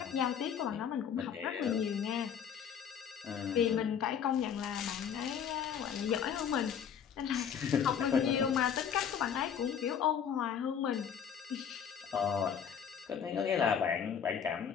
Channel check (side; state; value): right; quieter; 7.9 dB